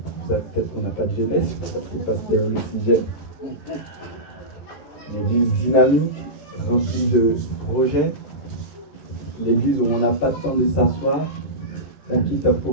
Peut-être qu'on n'a pas de jeunesse, parce que le pasteur est aussi jeune. Une église dynamique, remplie de projets. Une église où on n'a pas le temps de s'asseoir. On quitte un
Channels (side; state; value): right; late; 13 ms